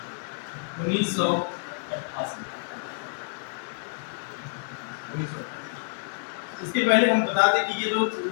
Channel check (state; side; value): silent; right; digital silence